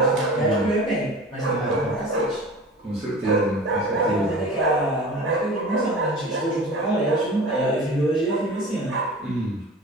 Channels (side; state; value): both; normal; correlation 0.37